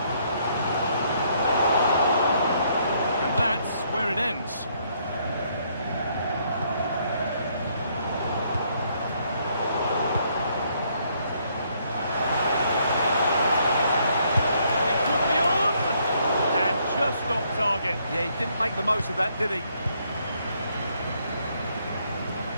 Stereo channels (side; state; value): both; inverted; correlation -0.70